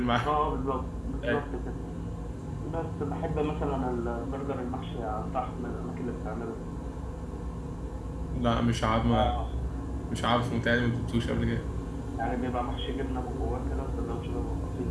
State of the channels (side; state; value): both; identical; correlation 1.00